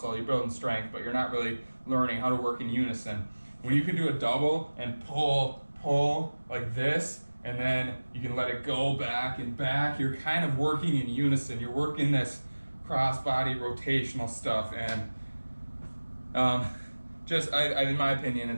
you're building strength, but you're not really learning how to work in unison. When you can do a double and pull like this, and then you can let it go back and back, you're kind of working in unison. You're working this cross-body rotational stuff, and in my opinion,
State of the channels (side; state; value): both; inverted; correlation -1.00